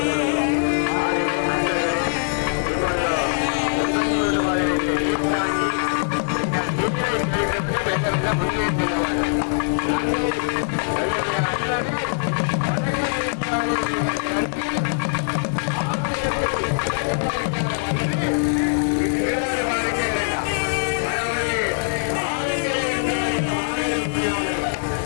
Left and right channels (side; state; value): right; silent; 63 dB below the other